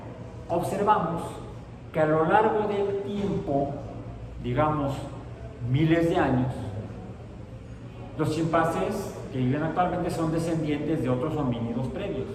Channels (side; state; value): both; identical; correlation 1.00